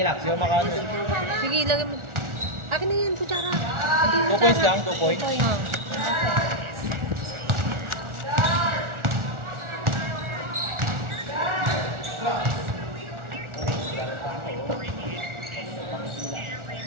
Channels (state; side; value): late; left; 1.4 ms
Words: lang. Siya makaano. Sige, lagay mo. Akin na yan, kutsara. 2 points lang, 2 points.